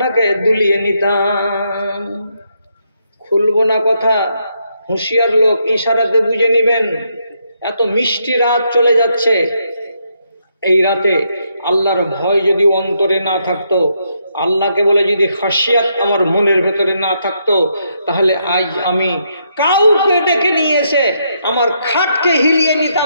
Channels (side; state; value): both; inverted; correlation -0.77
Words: দুলিয়ে নিতাম। খুলবো না কথা, হুঁশিয়ার লোক ইশারাতে বুঝে নেবেন। এত মিষ্টি রাত চলে যাচ্ছে, এই রাতে আল্লাহর ভয় যদি অন্তরে না থাকতো, আল্লাহকে বলে যদি খাসিয়াত আমার মনের ভেতরে না থাকতো, তাহলে আজ আমি কাউকে ডেকে নিয়ে এসে আমার খাটকে হিলিয়ে